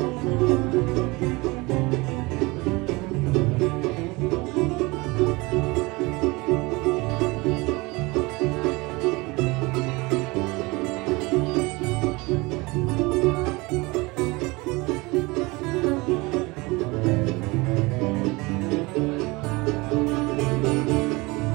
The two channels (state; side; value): quieter; left; 24.0 dB